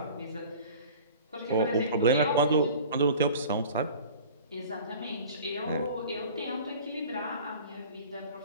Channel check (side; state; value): both; inverted; correlation -0.42